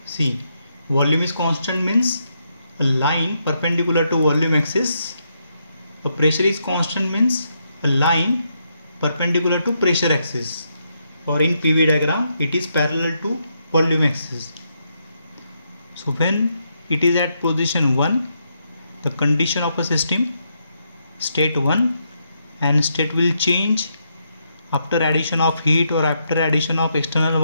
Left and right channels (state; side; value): inverted; both; correlation -0.79